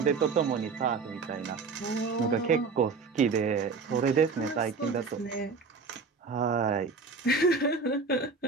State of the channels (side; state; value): left; quieter; 4.7 dB